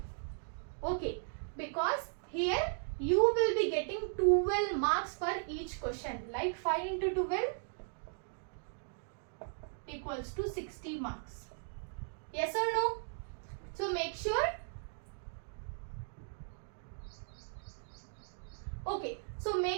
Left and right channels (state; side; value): silent; left; digital silence